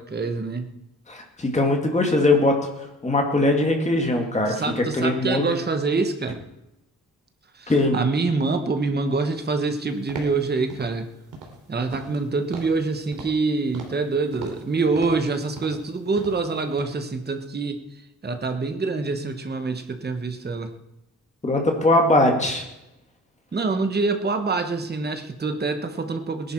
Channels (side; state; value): both; normal; correlation 0.49